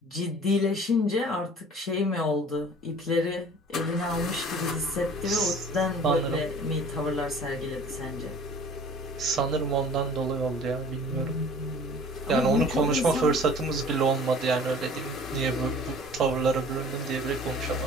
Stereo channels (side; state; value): both; normal; correlation 0.47